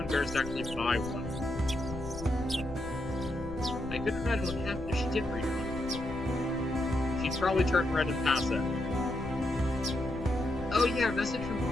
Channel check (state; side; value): noise; left; rumble, 13 dB below the sound